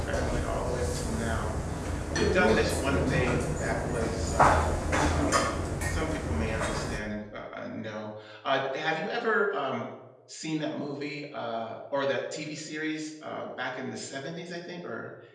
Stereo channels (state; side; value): identical; both; correlation 1.00